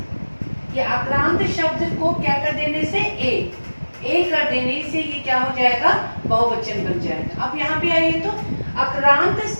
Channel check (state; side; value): inverted; both; correlation -1.00